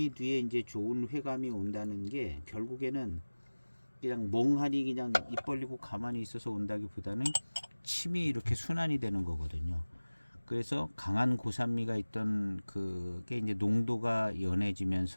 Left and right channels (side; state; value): both; inverted; correlation -1.00